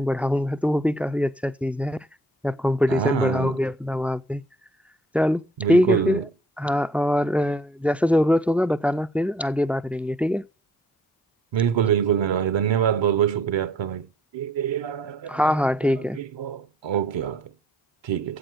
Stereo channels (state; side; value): normal; both; correlation 0.62